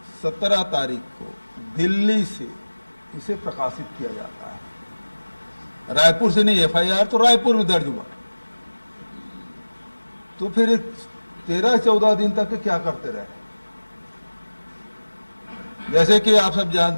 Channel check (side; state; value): both; inverted; correlation -1.00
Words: 17 तारीख को दिल्ली से इसे प्रकाशित किया जाता है। रायपुर से नहीं, एफआईआर तो रायपुर में दर्ज हुआ, तो फिर 13-14 दिन तक क्या करते रहे। जैसे कि आप सब